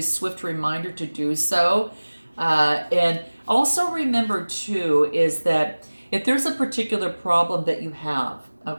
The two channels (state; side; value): inverted; both; correlation -1.00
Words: swift reminder to do so. And also remember too, is that if there's a particular problem that you have,